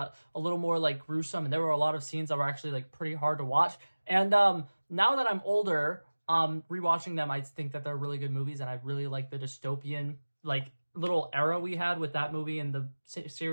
a little more gruesome, and there were a lot of scenes that were actually pretty hard to watch. And now that I'm older, rewatching them, I think that they're really good movies, and I really like the dystopian little era we had with that movie and the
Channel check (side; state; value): both; inverted; correlation -1.00